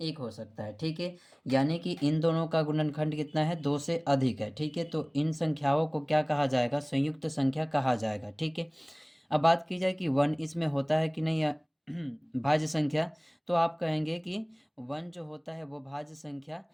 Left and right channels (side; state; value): both; identical; correlation 1.00